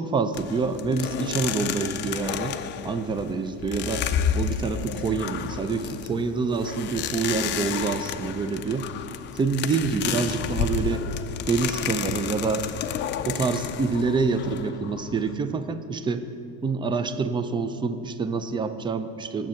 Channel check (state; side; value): normal; both; correlation 0.45